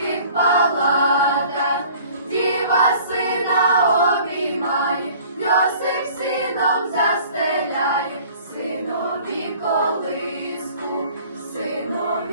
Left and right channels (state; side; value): inverted; both; correlation -0.50